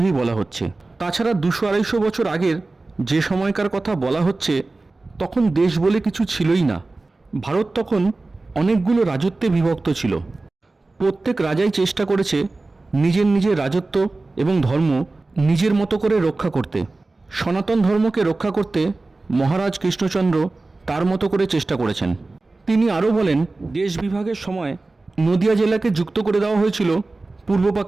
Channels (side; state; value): left; quieter; 3.3 dB